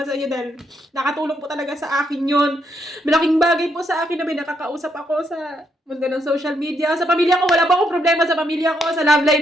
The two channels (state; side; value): normal; both; correlation 0.76